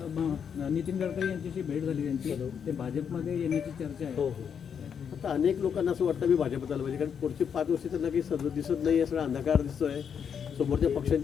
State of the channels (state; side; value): quieter; right; 7.5 dB